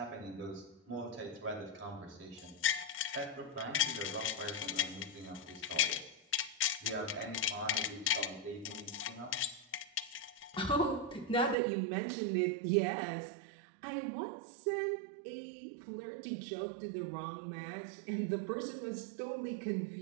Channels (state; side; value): drops out; left; at 11.6 s